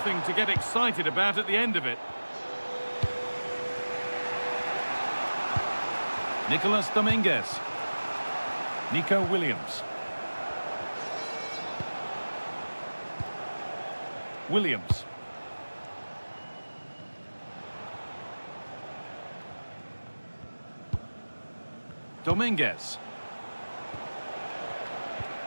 to get excited about at the end of it. Nicolas Dominguez. Nico Williams. Williams. Dominguez.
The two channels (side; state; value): both; inverted; correlation -1.00